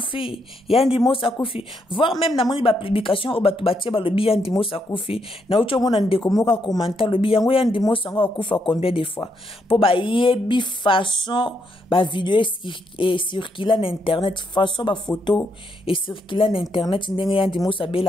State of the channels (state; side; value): normal; both; correlation 0.77